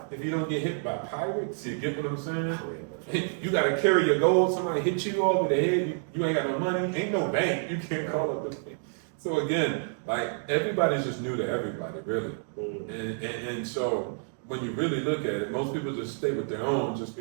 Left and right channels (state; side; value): silent; left; 59 dB below the other